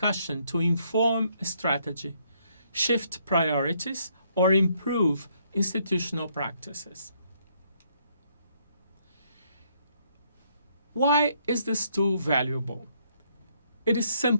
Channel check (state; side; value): inverted; both; correlation -0.70